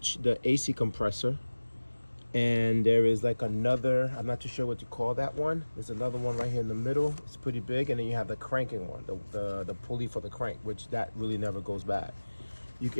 the AC compressor. And there is like another, I'm not too sure what to call that one. There's another one right here in the middle. It's pretty big. And then you have the cranking one, the pulley for the crank, which that really never goes bad.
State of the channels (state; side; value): inverted; both; correlation -1.00